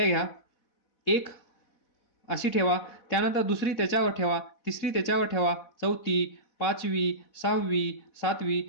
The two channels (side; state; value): right; late; 4.1 ms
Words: घ्या, एक अशी ठेवा, त्यानंतर दुसरी त्याच्यावर ठेवा, तिसरी त्याच्यावर ठेवा, चौथी, पाचवी, सहावी, सातवी,